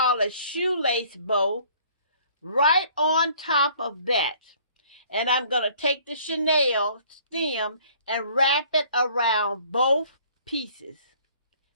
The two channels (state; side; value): inverted; both; correlation -0.56